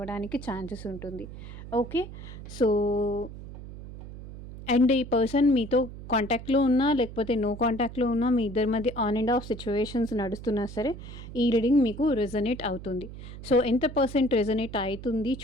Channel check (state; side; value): noise; right; hum, 13 dB below the sound